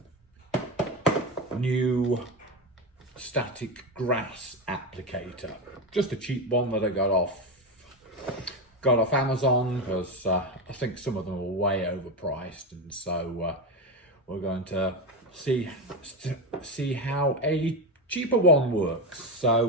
new static grass applicator, just a cheap one that I got off Amazon, because I think some of them are way overpriced, and so we're going to see how a cheaper one works. So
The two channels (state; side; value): normal; both; correlation 0.15